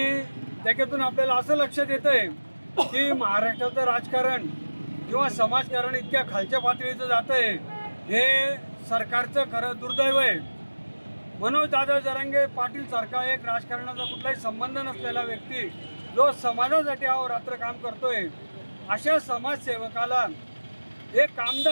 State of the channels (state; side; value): inverted; both; correlation -1.00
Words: त्याच्यातून आपल्याला असं लक्षात येतंय की महाराष्ट्राचं राजकारण किंवा समाजकारण इतक्या खालच्या पातळीचं जातंय, हे सरकारचं खरं दुर्दैव आहे। मनोज दादा जरांगे पाटील सारखा एक राजकारणाचा कुठलाही संबंध नसलेला व्यक्ती जो समाजासाठी अहोरात्र काम करतोय, अशा समाजसेवकाला एक